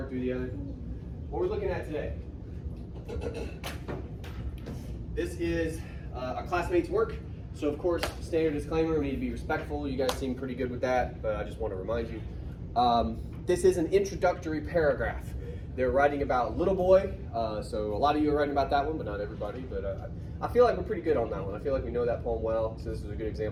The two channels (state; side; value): identical; both; correlation 1.00